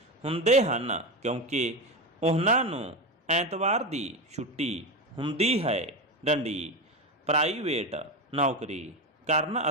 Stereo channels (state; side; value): normal; both; correlation 0.18